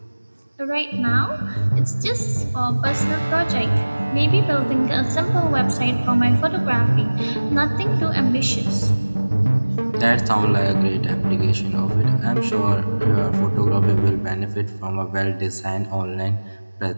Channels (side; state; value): both; inverted; correlation -1.00